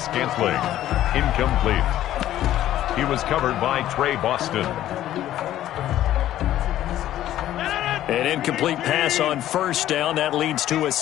Incomplete. He was covered by Trey Boston. An incomplete pass on first down. That leads to a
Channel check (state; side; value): quieter; right; 12.9 dB